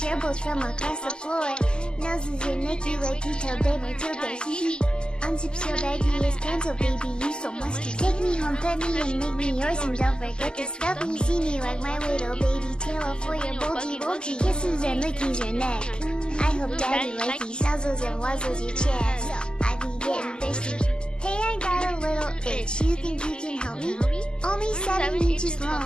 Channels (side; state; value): right; late; 0.047 ms